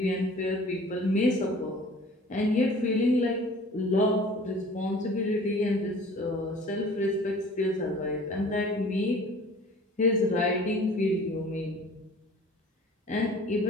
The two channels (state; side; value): normal; both; correlation 0.47